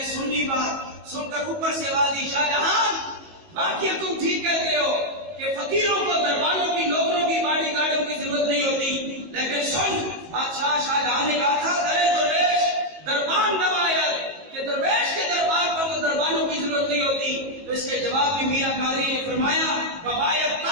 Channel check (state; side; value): late; left; 19 ms